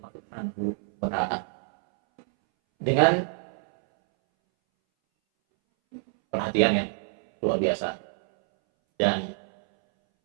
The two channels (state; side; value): silent; left; 61 dB below the other